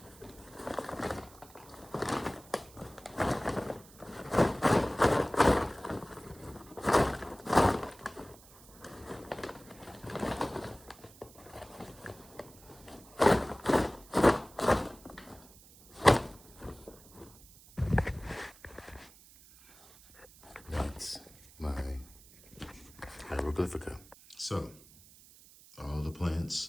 That's my hieroglyphica. So, all the plants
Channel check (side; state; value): right; noise; hiss, 23 dB below the sound